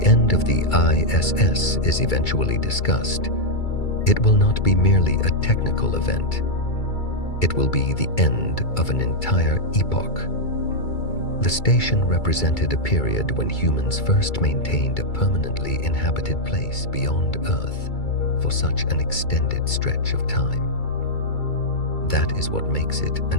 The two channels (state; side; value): late; right; 2.3 ms